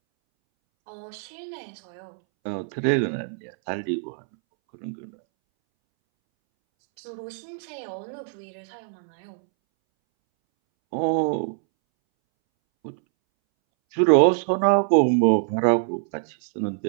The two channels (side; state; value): left; silent; 62 dB below the other